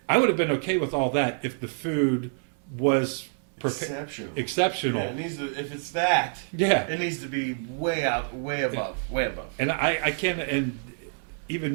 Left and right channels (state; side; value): silent; left; digital silence